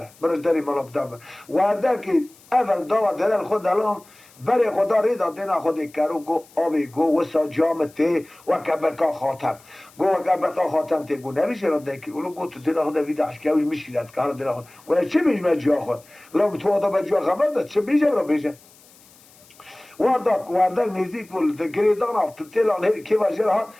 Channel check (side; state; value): left; noise; hiss, 26 dB below the sound